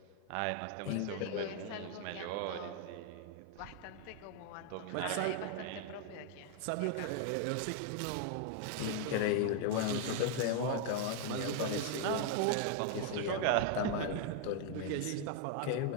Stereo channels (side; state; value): both; different; correlation 0.00